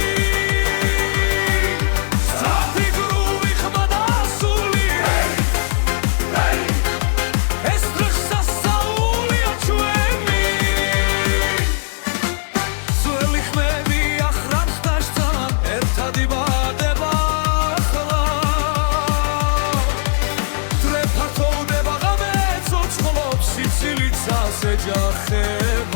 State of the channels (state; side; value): silent; right; 67 dB below the other